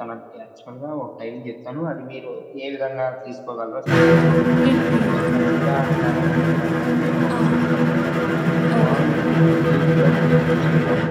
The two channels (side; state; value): both; identical; correlation 1.00